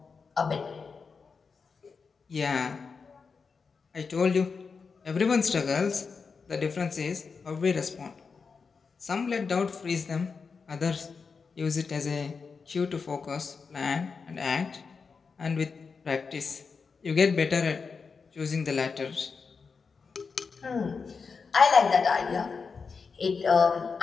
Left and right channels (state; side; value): quieter; right; 5.1 dB